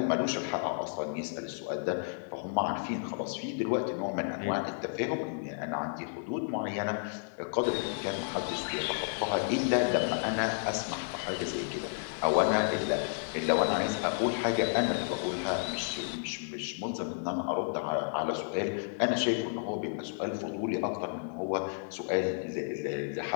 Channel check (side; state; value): right; silent; digital silence